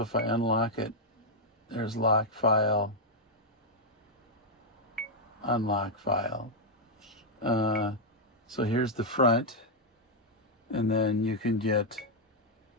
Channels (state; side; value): normal; both; correlation -0.02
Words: if I unlock it, there's lock file, unlock file. So here's the front, and then you can get